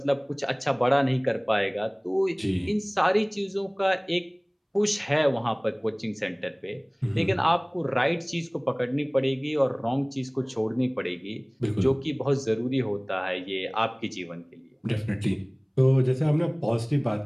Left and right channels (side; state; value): both; identical; correlation 1.00